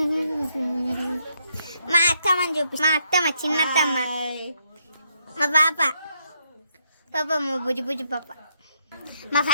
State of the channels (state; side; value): inverted; both; correlation -0.75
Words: మా అత్తమ్మని చూపి. మా అత్తమ్మ, చిన్నత్తమ్మ, మా పాప మా బుజ్జి పాప, మా